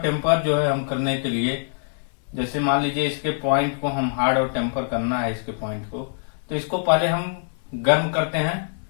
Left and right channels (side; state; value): right; silent; 63 dB below the other